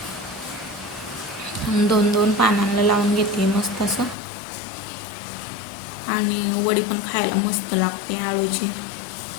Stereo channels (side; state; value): right; drops out; at 4.2 s